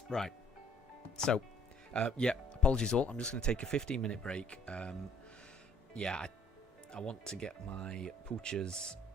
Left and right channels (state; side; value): normal; both; correlation 0.59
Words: Right, so, yeah, apologies all. I'm just going to take a 15-minute break. Yeah, I want to get my poochers